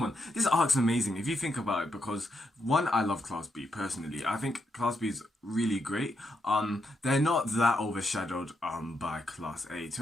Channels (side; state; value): both; normal; correlation 0.81